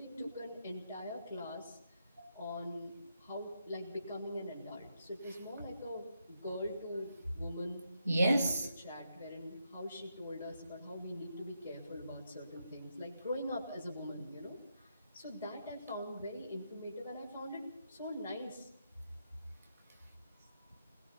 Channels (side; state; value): both; inverted; correlation -0.81